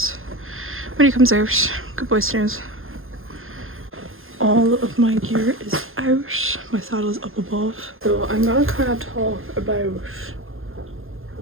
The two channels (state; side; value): late; left; 0.60 ms